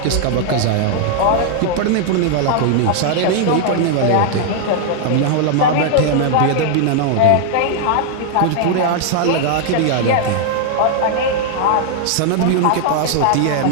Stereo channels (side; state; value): both; different; correlation 0.00